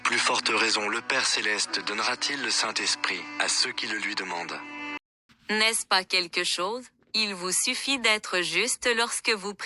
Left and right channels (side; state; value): both; identical; correlation 1.00